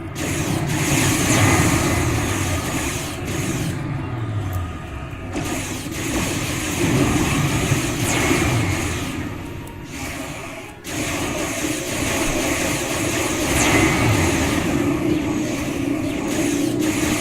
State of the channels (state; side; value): identical; both; correlation 1.00